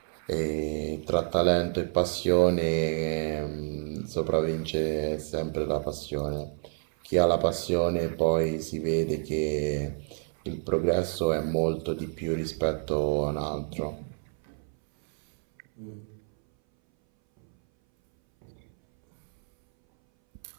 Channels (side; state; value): left; silent; 59 dB below the other